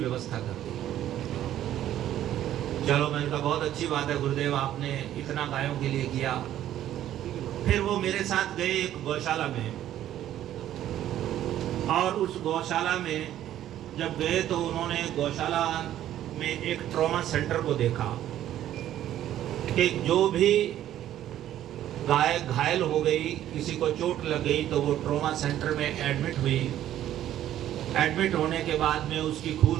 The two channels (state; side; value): quieter; left; 12.2 dB